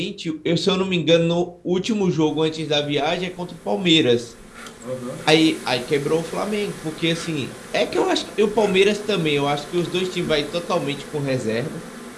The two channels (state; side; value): identical; both; correlation 1.00